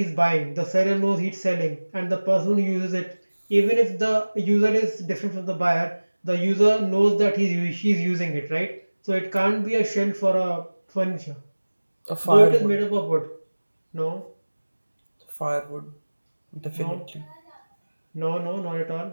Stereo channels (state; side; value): inverted; both; correlation -1.00